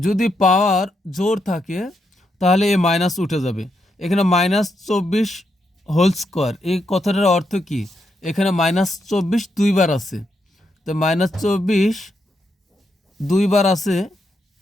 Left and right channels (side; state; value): both; normal; correlation 0.81